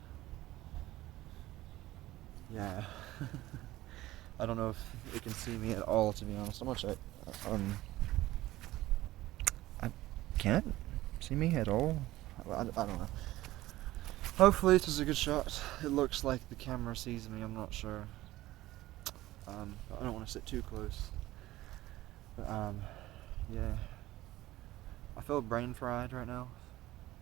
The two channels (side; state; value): left; quieter; 16.6 dB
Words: Yeah. I don't know if it can see me at all, to be honest. How much I can't see me at all. I don't know. Hopefully this is a good shot. It looks like the camera sees me. I'm not sure. I don't want to sit too close. But, yeah. I feel brain fried right now.